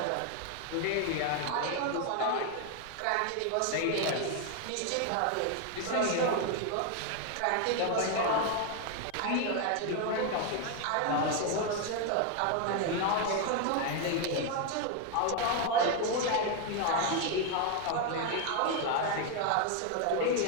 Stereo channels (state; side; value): different; both; correlation 0.01